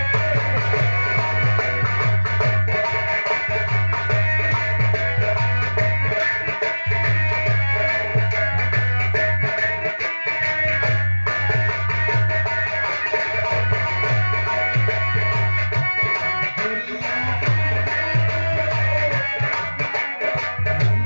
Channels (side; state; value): both; inverted; correlation -1.00